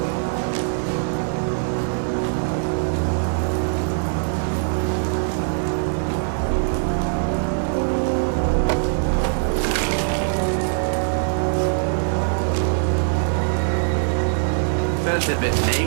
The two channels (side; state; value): left; silent; digital silence